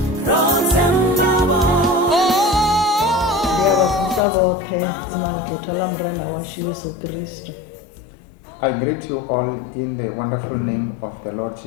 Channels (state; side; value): drops out; right; at 4.2 s